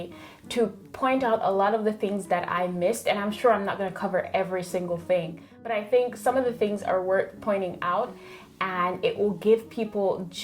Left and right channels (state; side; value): identical; both; correlation 1.00